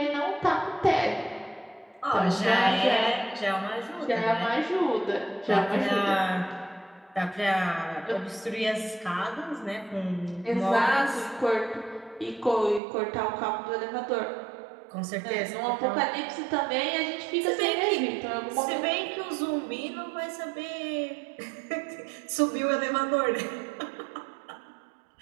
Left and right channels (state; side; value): drops out; left; at 12.8 s